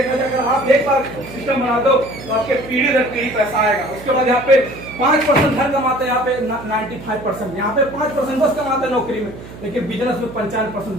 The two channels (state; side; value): noise; right; hum, 15 dB below the sound